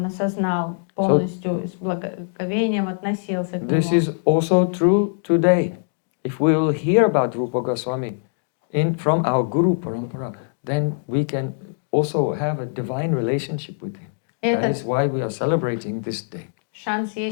осознал полностью, с благоговением относился к This нему. is also true today. If we will hear about Rūpa Gosvāmī from our Guru Parampara, then we can also have a divine relationship with him. That is why we are celebrating this day. Шанс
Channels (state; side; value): silent; right; digital silence